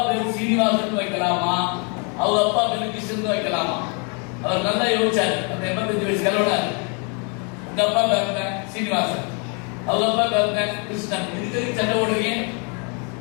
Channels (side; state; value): right; quieter; 36.5 dB